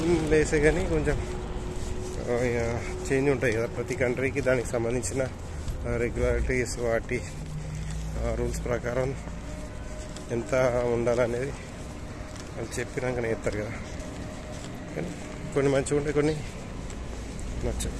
లేసే కానీ కొంచెం చేంజ్ ఉంటాయి కదా. ప్రతి కంట్రీకి దానికి సంబంధించిన రెగ్యులారిటీస్, వాటి రూల్స్ ప్రకారం ఎంత ఉండాలనేది వాళ్ళు చెప్పినాకనే చెప్తారు కదా. కానీ కొన్ని మంచిగా ఉంటాయి, కొన్ని నచ్చాయి.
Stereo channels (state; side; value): identical; both; correlation 1.00